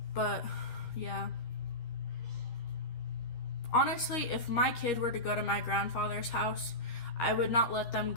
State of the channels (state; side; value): late; right; 13 ms